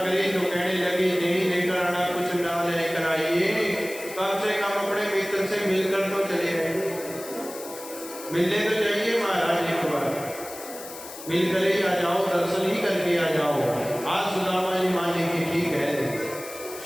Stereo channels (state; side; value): noise; left; hiss, 13 dB below the sound